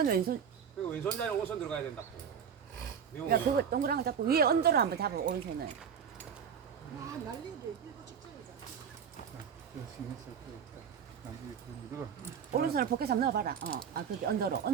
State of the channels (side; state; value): left; quieter; 7.5 dB